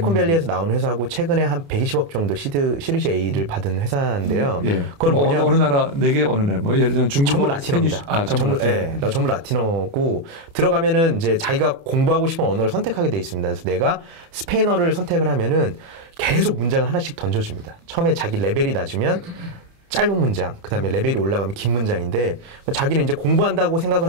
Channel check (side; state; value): left; late; 28 ms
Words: 나온 회사고 최근에 한 120억 정도 시리즈 A를 받은 회사인데요. 예. 그럼 어느 나라 4개 어느 나라? 뭐 예를 들면 중국어, 전부 라틴어입니다. 전부 라틴어. 네, 전부 라틴어고 들어가면은 이제 자기가 공부하고 싶은 언어를 선택하게 돼 있습니다. 그래서 내가 스페인어를 선택을 하면은 계속 문장을 하나씩 던져줍니다. 처음에 자기 레벨이 낮으면 짧은 문장, 그 다음에 레벨이 올라가면 긴 문장인데, 자기는 이제 공부한다고 생각을